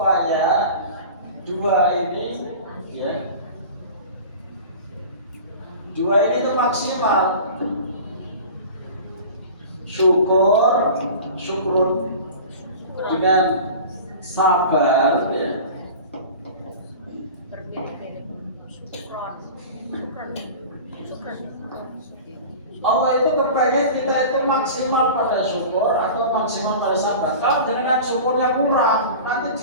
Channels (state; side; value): inverted; both; correlation -0.37